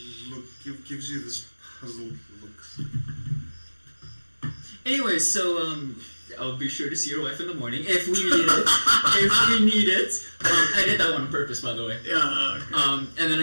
gives you this puzzled look. Anyway, so I'll be sure to see your wife in the morning if we need it. If we need it. I did that one on purpose, by the way. Yeah. Okay. And then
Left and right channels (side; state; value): both; inverted; correlation -1.00